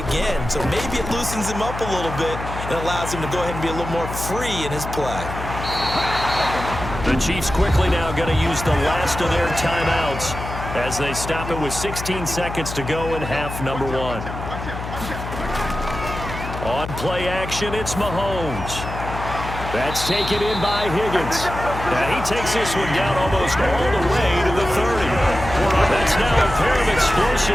So maybe it loosens him up a little bit and allows him to go ahead and be a little more free in his play. The Chiefs quickly now going to use the last of their timeouts as they stop it with 16 seconds to go in half number 1. On play action, it's Mahomes. That's taken in by Higgins. And he takes this one down almost all the way to the 30. That's now a pair of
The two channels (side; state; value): left; noise; hum, 8 dB below the sound